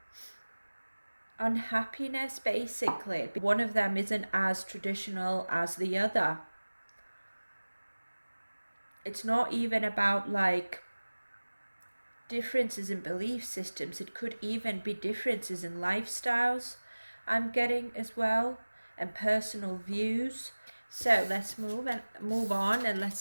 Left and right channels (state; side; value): inverted; both; correlation -1.00